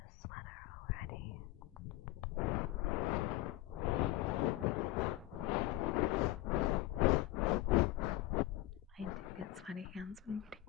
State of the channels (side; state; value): right; quieter; 16.7 dB